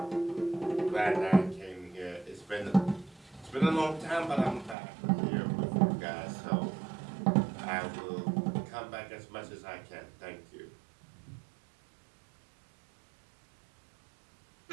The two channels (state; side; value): drops out; left; at 4.8 s